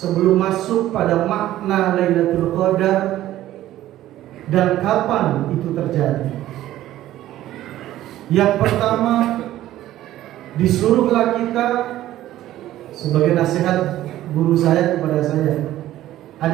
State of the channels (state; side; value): quieter; left; 14.0 dB